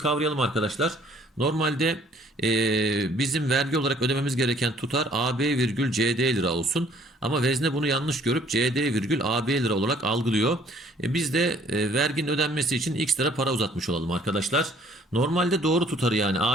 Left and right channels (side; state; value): both; normal; correlation 0.59